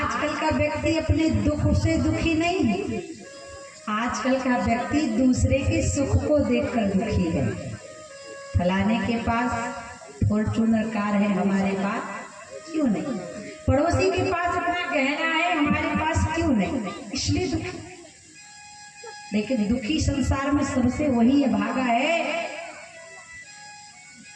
का व्यक्ति अपने दुख से दुखी नहीं है, आजकल का व्यक्ति दूसरे के सुख को देखकर दुखी है। फलाने के पास फॉर्च्यूनर कार है, हमारे पास क्यों नहीं? पड़ोसी के पास अपना गहना है, हमारे पास क्यों नहीं? इसलिए दुखी। लेकिन दुखी संसार में सबसे वही है भागा है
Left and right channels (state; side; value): identical; both; correlation 1.00